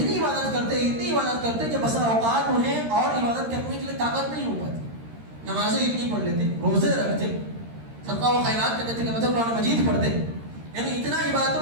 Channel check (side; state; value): left; late; 13 ms